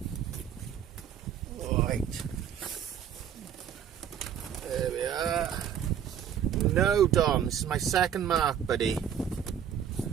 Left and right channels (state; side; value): quieter; left; 9.0 dB